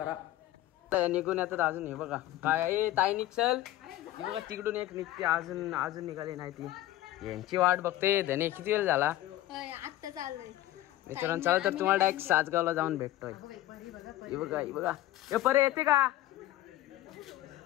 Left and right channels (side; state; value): right; quieter; 14.9 dB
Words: निघून येतात अजून। हे बघा काय आहे ताई निघल, हे बघा तिकडून एक निघते, अजून निघाली नाही ती, यांची वाट बघते। धने किती वेळ झाला आता चाललोय मित्रांनो। चला तर तुम्हाला डायरेक्ट सासगावला जाऊन भेटतोय। हे बघा हे बघा हे परे येते का